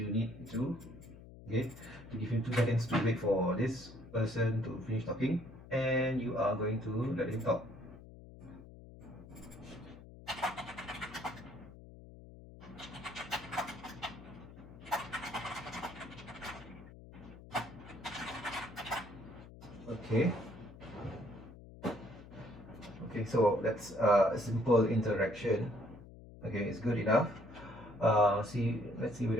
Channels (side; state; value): left; noise; hum, 17 dB below the sound